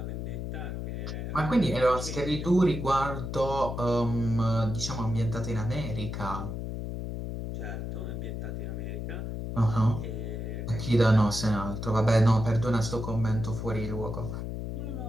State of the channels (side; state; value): left; noise; hum, 5 dB below the sound